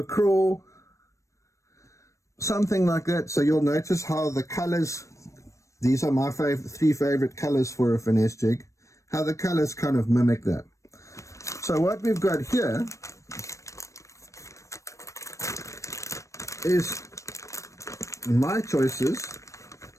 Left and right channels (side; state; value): right; late; 0.15 ms